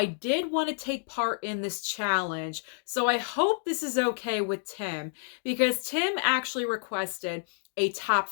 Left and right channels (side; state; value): right; silent; digital silence